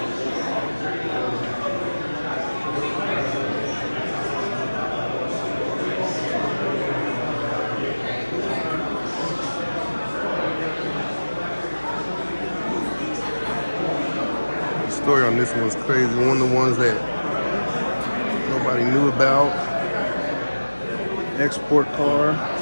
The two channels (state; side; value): inverted; both; correlation -1.00